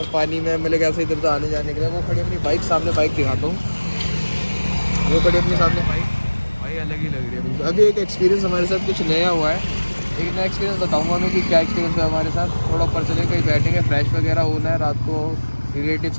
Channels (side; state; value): both; inverted; correlation -1.00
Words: पानी में मिले कैसे इधर से आने जाने के लिए। वो खड़ी अपनी बाइक, सामने बाइक दिखाता हूँ। वो खड़ी अपने सामने भाई अलग ही लग रही है बिल्कुल। अभी एक एक्सपीरियंस हमारे साथ कुछ नया हुआ है, एक नया एक्सपीरियंस बताऊंगा मैं कि क्या एक्सपीरियंस हुआ हमारे साथ। थोड़ा ऊपर चले कहीं बैठेंगे, फ्रेश वगैरह होना है, रात को रिलेटिव्स